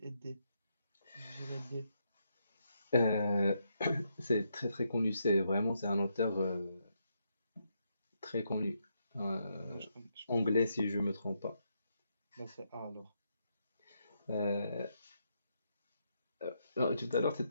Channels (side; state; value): both; inverted; correlation -0.79